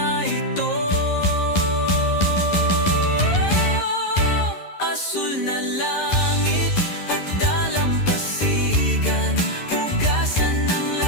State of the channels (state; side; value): late; right; 11 ms